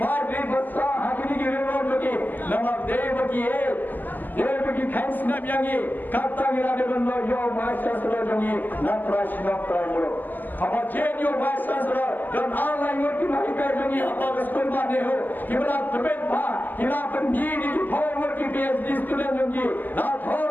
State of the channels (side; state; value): right; late; 0.086 ms